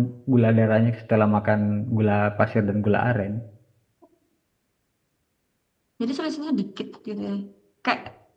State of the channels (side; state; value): both; identical; correlation 1.00